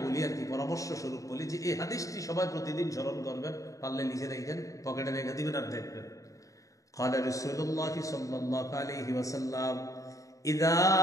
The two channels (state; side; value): late; right; 0.16 ms